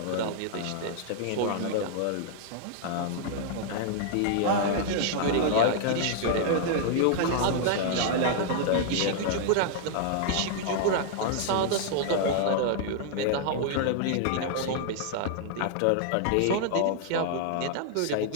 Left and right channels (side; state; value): both; different; correlation -0.01